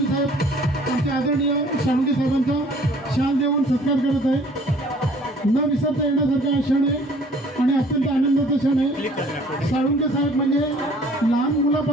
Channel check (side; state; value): both; normal; correlation 0.54